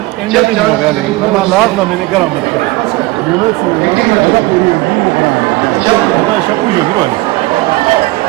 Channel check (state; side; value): quieter; left; 20.7 dB